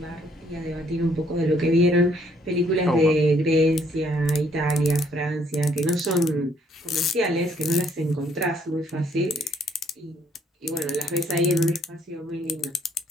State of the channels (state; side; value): normal; both; correlation 0.66